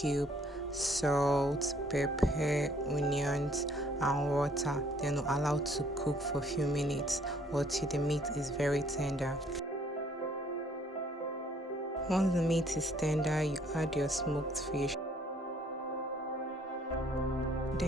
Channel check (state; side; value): normal; both; correlation 0.62